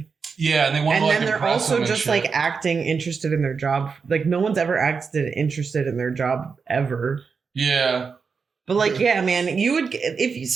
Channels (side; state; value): left; quieter; 5.4 dB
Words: Yeah, and they want to like then they're also just like acting interested in their job. Like no one's ever acted interested in their job ever. Yeah. But like, yeah, man, you would if